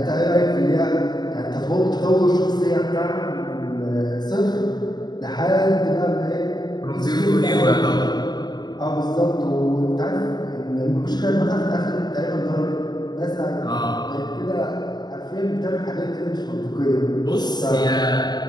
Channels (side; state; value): right; late; 0.20 ms